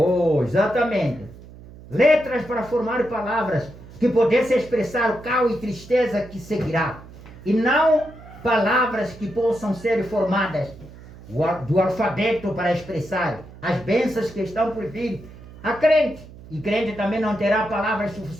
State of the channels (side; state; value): right; noise; hum, 18 dB below the sound